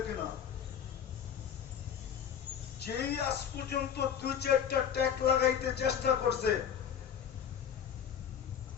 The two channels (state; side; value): quieter; right; 8.5 dB